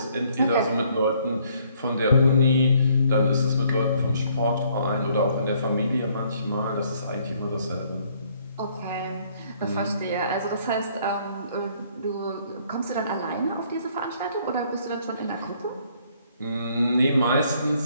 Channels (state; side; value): inverted; both; correlation -0.64